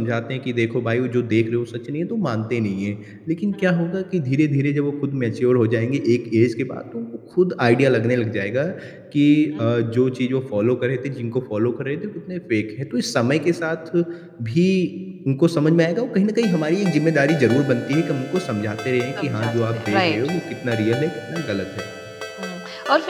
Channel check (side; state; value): both; identical; correlation 1.00